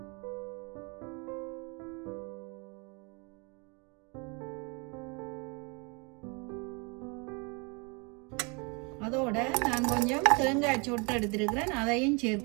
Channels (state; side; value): quieter; left; 31.5 dB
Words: அதோட நான் கொஞ்சம் தேங்காய் சொட்டு எடுத்துருக்கிறேன், அதையும்